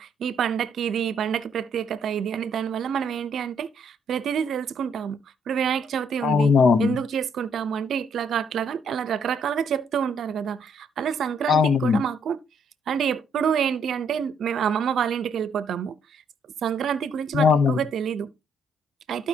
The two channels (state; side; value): normal; both; correlation 0.69